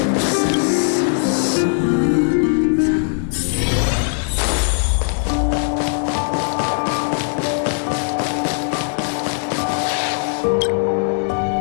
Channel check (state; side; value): silent; right; digital silence